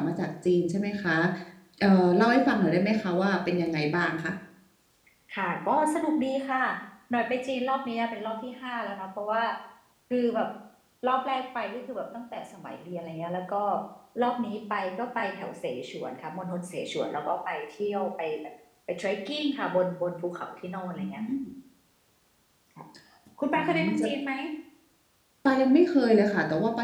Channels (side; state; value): both; identical; correlation 1.00